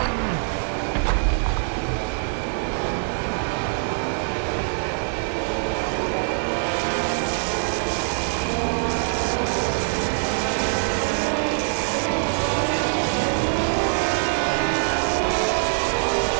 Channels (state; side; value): silent; left; digital silence